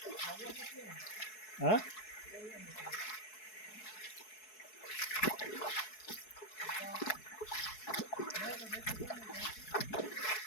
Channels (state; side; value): late; right; 4.7 ms